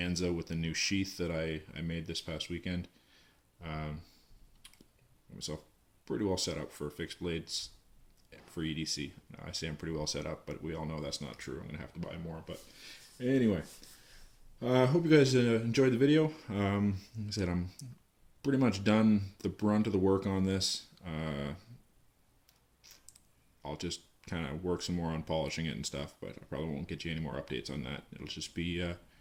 with the new sheath that I made this past weekend, got myself pretty well set up for fixed blades for EDC. I say I'm pretty well set up, but we all know that's not true. I'm going to have to buy more. But anyway, I hope you guys enjoyed the video. Like I said, I'm pretty much done the brunt of the work on this. I'll just kind of work some more on polishing it and stuff, but I probably won't get you any more updates on that. It'll just be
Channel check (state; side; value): identical; both; correlation 1.00